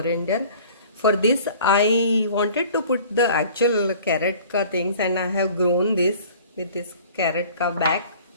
For this I wanted to put the actual carrot ka things, and I have grown this with this carrot ka back,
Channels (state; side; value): inverted; both; correlation -0.48